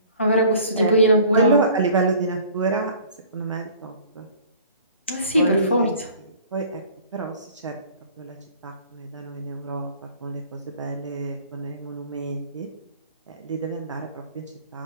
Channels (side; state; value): both; inverted; correlation -0.49